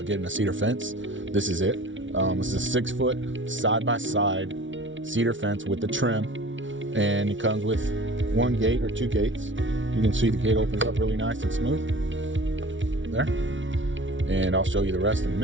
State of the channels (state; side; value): late; left; 0.56 ms